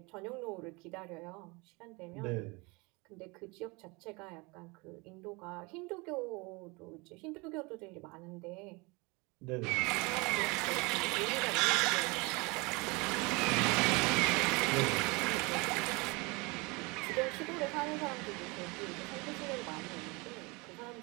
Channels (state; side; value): quieter; left; 26.9 dB